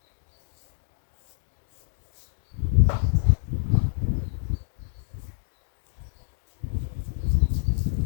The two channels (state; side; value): silent; right; digital silence